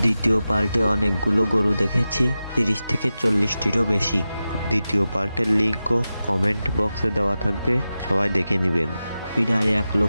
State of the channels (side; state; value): both; inverted; correlation -0.93